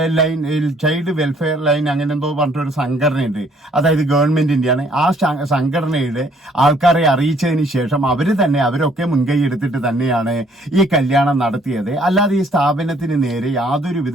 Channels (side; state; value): both; normal; correlation 0.63